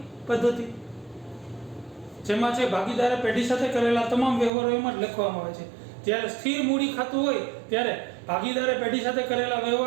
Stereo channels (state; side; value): drops out; left; at 4.5 s